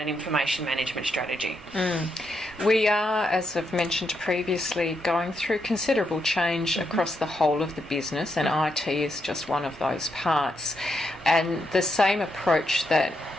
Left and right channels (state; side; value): normal; both; correlation 0.80